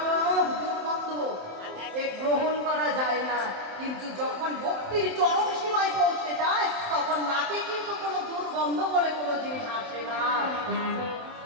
দুর্গন্ধ, এ গ্রহণ করা যায় না। কিন্তু যখন ভক্তির চরম সীমায় পৌঁছে যায়, তখন নাকে কিন্তু কোনো দুর্গন্ধ বলে কোনো জিনিস আসে না।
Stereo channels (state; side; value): late; left; 27 ms